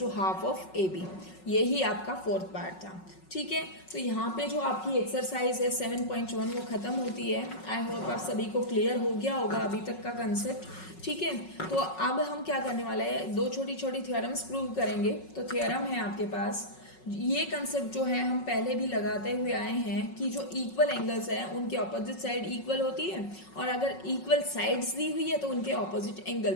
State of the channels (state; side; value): late; right; 5.4 ms